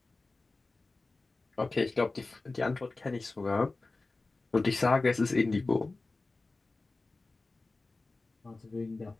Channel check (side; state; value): right; quieter; 3.4 dB